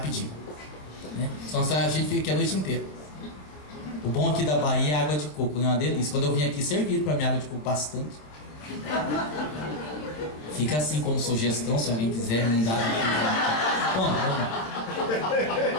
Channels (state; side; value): late; right; 27 ms